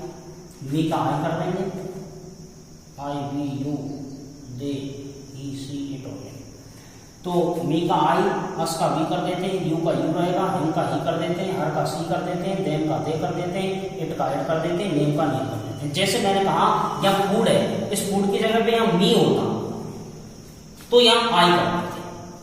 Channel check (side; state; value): both; identical; correlation 1.00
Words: मी का आई कर देंगे, I we you they he she it हो गया। तो मी का आई, अस का वी कर देते हैं, यू का यू रहेगा, हिम का ही कर देते हैं, हर का सी कर देते हैं, देम का दे कर देते हैं, इट का इट कर देते हैं, नेम का नेम कर देते हैं। जैसे मैंने कहा या फूड है इस फूड की जगह पे यहाँ मी होता तो यहाँ आई कर देते,